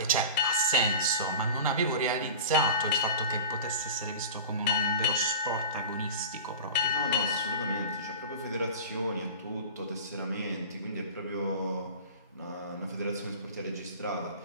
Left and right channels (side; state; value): both; inverted; correlation -0.35